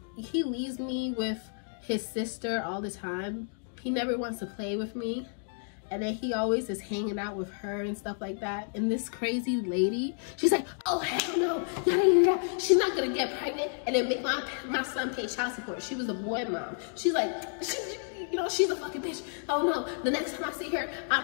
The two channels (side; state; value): right; silent; 57 dB below the other